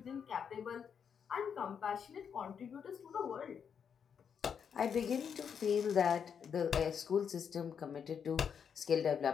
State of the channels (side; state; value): right; quieter; 7.2 dB